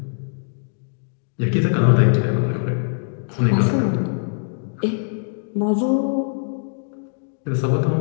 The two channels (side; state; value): right; silent; digital silence